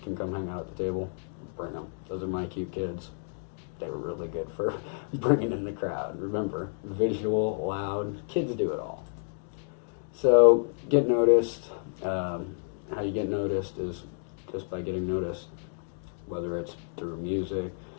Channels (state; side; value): silent; right; digital silence